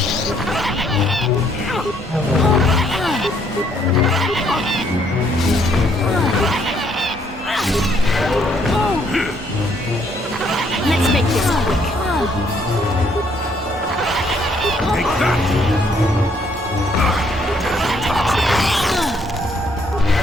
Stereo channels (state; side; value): normal; both; correlation 0.68